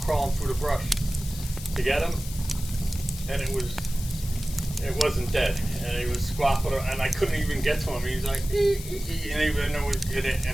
through the brush to get him, and it wasn't dead, and he was squawking, and I couldn't even get to him. He was like,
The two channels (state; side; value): noise; left; hiss, 12 dB below the sound